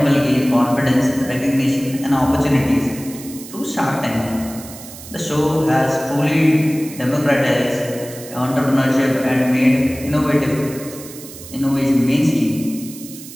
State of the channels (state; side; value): noise; right; hiss, 15 dB below the sound